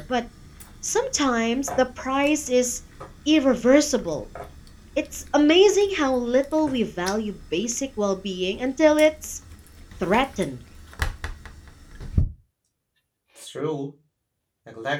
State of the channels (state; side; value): identical; both; correlation 1.00